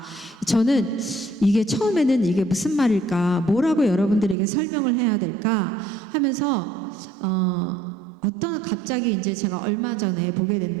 저는 이게 처음에는 이게 무슨 말일까, 뭐라고 여러분들에게 설명을 해야 될까 하면서 갑자기 이제 제가 얼마 전에 보게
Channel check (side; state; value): left; drops out; at 4.4 s